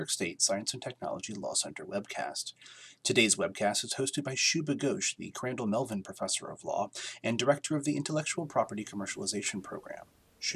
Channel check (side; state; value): both; identical; correlation 1.00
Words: State Science and Technology Law Center webcast. Today's webcast is hosted by Shubha Ghosh, the Crandall Melvin Professor of Law and Director of the Intellectual Property Commercialization Program.